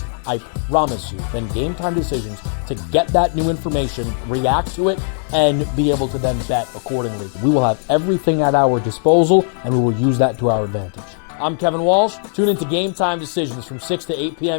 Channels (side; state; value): right; silent; digital silence